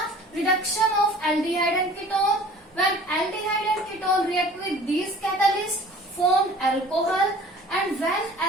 reduction of aldehyde and ketone. When aldehyde and ketone react with these catalysts, form alcohol, and when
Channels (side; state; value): both; normal; correlation 0.47